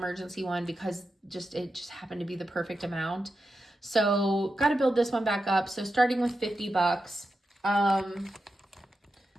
one because it just happened to be the perfect amount. So got to build this one back up. So starting with $50.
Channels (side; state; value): both; normal; correlation 0.89